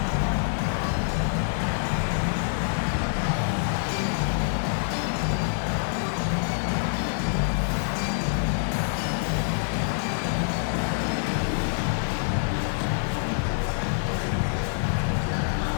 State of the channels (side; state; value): right; silent; digital silence